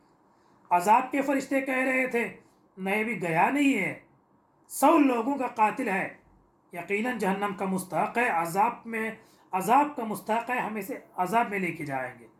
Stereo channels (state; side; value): identical; both; correlation 1.00